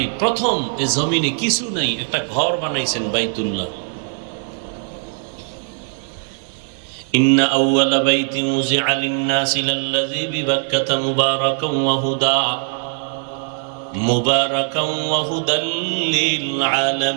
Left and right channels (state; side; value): silent; left; 60 dB below the other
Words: প্রথম এই জমিনে কিছু নাই, একটা ঘর বানাইছেন, বাইতুল্লাহ। ইন্না আউওয়ালা বাইতিন উযিআ লিন-নাসি লাল্লাযী বিবাক্কাতা মুবারাকান ওয়া হুদা মুবারাকান ওয়া হুদাল লিল